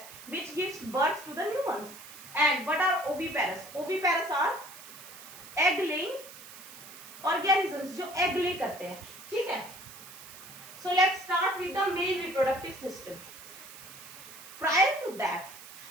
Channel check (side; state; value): right; noise; hiss, 16 dB below the sound